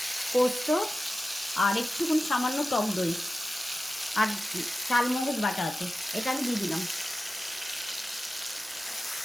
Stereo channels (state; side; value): normal; both; correlation 0.94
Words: পোস্ত আর একটুখানি সামান্য টক দই আর চালমগজ বাটা আছে, এটা আমি দিয়ে দিলাম।